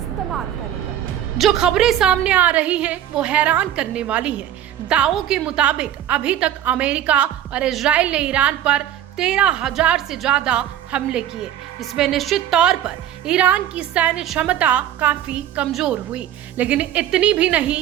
करेगा। जो खबरें सामने आ रही हैं वो हैरान करने वाली हैं। दावों के मुताबिक अभी तक अमेरिका और इजराइल ने ईरान पर 13,000 से ज्यादा हमले किए। इसमें निश्चित तौर पर ईरान की सैन्य क्षमता काफी कमजोर हुई, लेकिन इतनी भी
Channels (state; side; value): quieter; left; 11.2 dB